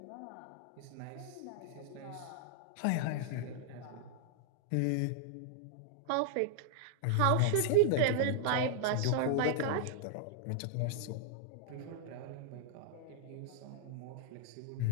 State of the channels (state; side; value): different; both; correlation -0.01